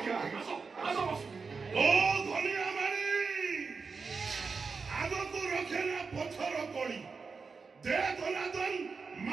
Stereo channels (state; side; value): quieter; left; 4.9 dB